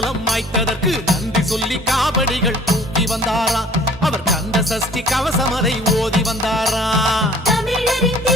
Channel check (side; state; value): both; normal; correlation 0.52